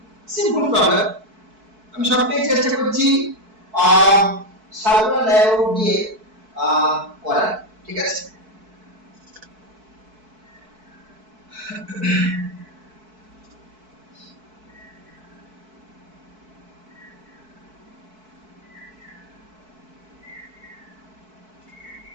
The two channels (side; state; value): left; late; 4.6 ms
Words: simple problem, আমি সবটাই চেষ্টা করছি সাধারণ লেভেল দিয়ে করার, ঠিক আছে।